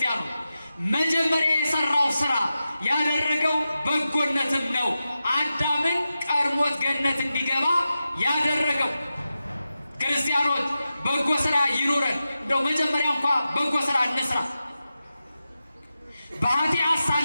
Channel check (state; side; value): inverted; both; correlation -0.91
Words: መጀመሪያ የሰራው ስራ ያደረገው በጎነትም ነው። አዳምን ቀድሞት ገነት እንዲገባ ያደረገው። ክርስቲያኖች በጎ ስራ ይኑረን። እንደው መጀመሪያ እንኳ በጎ ስራ እንስራ። በኃጢአት